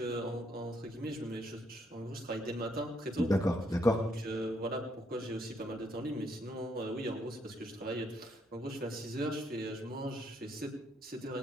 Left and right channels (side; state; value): both; normal; correlation 0.73